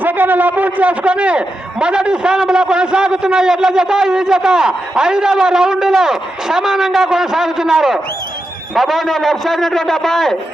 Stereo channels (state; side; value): normal; both; correlation 0.88